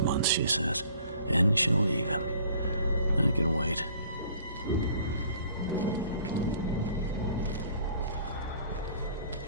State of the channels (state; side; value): inverted; both; correlation -0.55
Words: months, she says, and she'll leave him. I can wait.